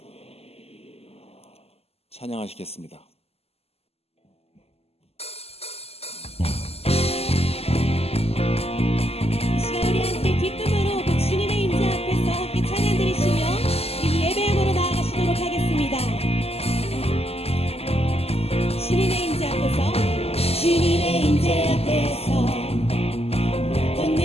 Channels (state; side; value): late; right; 0.29 ms